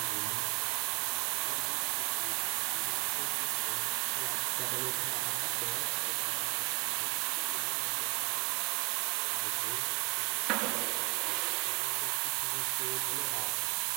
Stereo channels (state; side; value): quieter; left; 28.8 dB